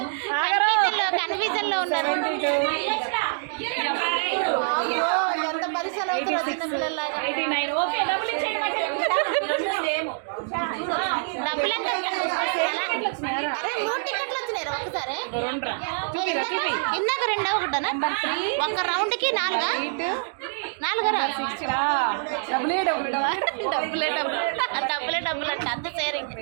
కన్ఫ్యూజన్ లో ఉన్నారు. ఎంత పరిచయం అవుతారు చిన్న పిల్లల్లాగా. 89. ఓకే డబ్బులు ఎంత? అరే 3 టికెట్లు వచ్చినాయి ఒక్కసారి. ఇందాక 2 ఒకటనా? ఒక రౌండ్ కి 4రా? డబ్బులే అంటే అంత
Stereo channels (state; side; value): silent; left; digital silence